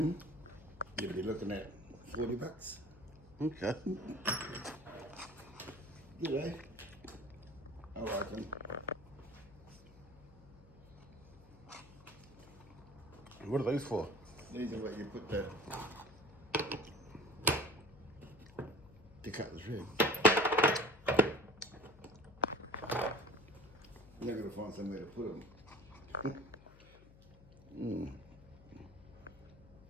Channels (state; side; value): noise; left; hum, 21 dB below the sound